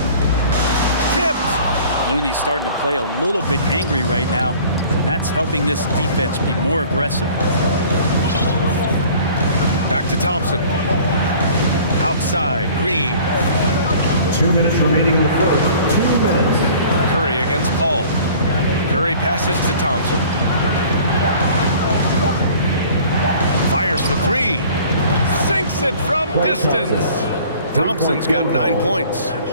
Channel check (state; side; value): inverted; both; correlation -0.49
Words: Tipped. Looney's starting to play a little bit angry right now, and that's helping this defense be more aggressive. Back to Thompson. Outside, Green. 2 minutes remaining in the first. 2 minutes. Curry against Paul. Curry passes to Thompson. Fires for 3. Sinks it from distance. Thompson's got 9 points.